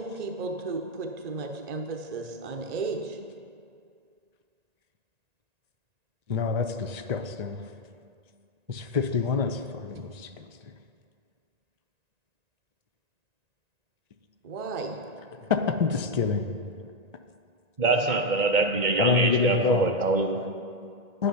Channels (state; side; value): late; left; 1.9 ms